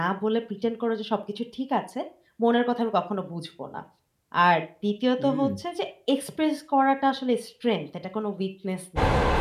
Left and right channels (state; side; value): identical; both; correlation 1.00